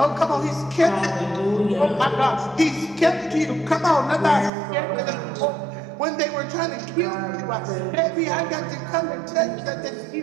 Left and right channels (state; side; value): drops out; left; at 4.5 s